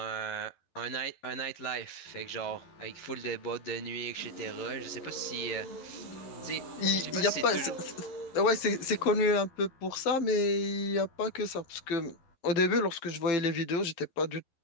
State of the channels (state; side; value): late; right; 11 ms